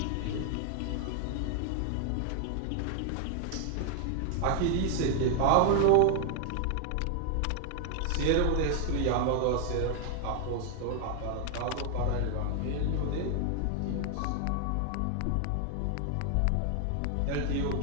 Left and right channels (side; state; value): both; different; correlation 0.00